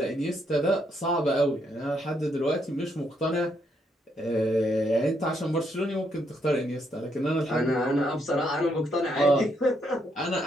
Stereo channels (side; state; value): both; normal; correlation 0.75